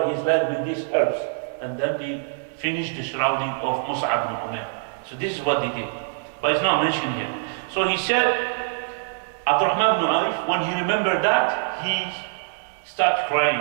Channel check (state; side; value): silent; left; digital silence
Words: his leg with these herbs, and then they finish the shrouding of Mus'ab ibn Umair. So this is what they did. But it's not mentioned here. So he said, Abdul Rahman ibn Auf, when he remembered that, he started